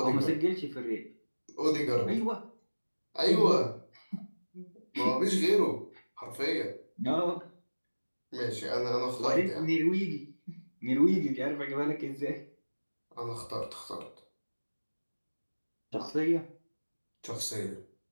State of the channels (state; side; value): inverted; both; correlation -1.00